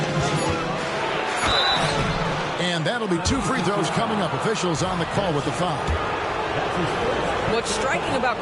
And that'll be 2 free throws coming up. Officials on the call with the foul. What's striking about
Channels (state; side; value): identical; both; correlation 1.00